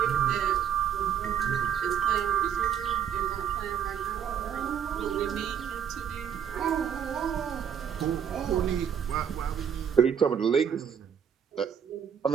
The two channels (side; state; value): left; quieter; 8.3 dB